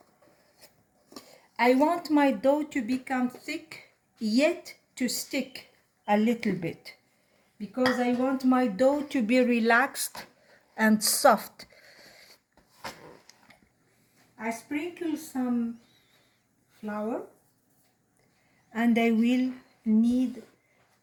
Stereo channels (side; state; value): both; identical; correlation 1.00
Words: I want my dough to become thick, yet to stick a little bit, because I want my dough to be relaxed and soft. I sprinkle some flour, and I will knead